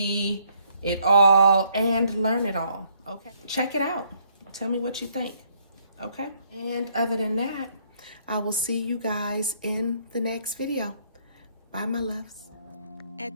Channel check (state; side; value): inverted; both; correlation -0.67